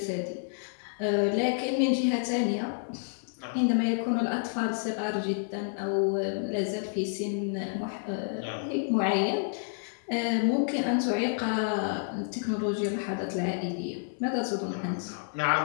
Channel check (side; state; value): right; silent; 56 dB below the other